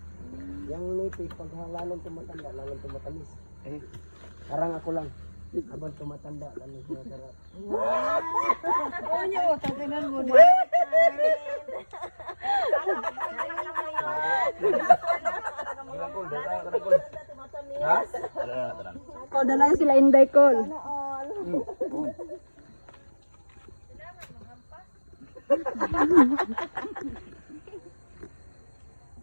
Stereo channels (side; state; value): both; inverted; correlation -1.00